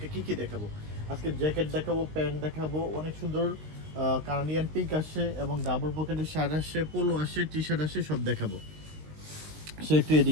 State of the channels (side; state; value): left; late; 19 ms